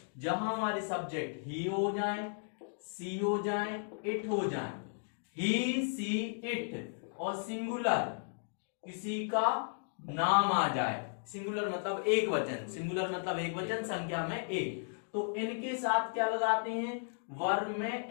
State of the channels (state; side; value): silent; right; digital silence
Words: सब्जेक्ट ही हो जाए, सी हो जाए, इट हो जाए, ही, सी, इट और सिंगुलर किसी का नाम आ जाए, सिंगुलर मतलब एक वचन, सिंगुलर मतलब एक वचन, संख्या में एक, तो इनके साथ क्या लगाते हैं? वर्ब में